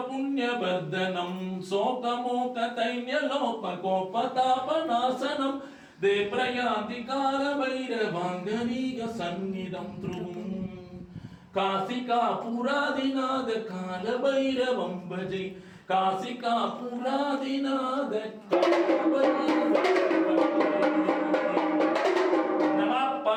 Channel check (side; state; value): both; identical; correlation 1.00